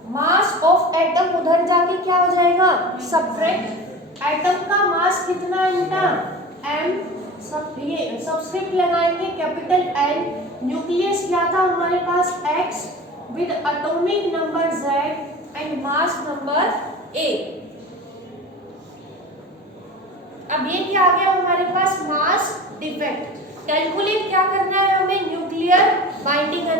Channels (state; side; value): normal; both; correlation 0.35